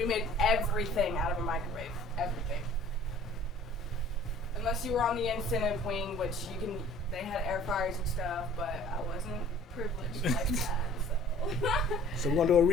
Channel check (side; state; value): both; normal; correlation 0.50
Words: made everything out of a microwave. Everything. Unless you were on the incentive wing, which they had air fryers and stuff, but I wasn't privileged like that, so. So we're gonna do a